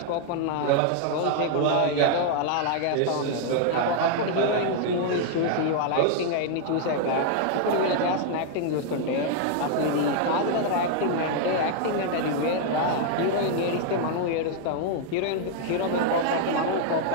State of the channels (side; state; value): both; different; correlation 0.00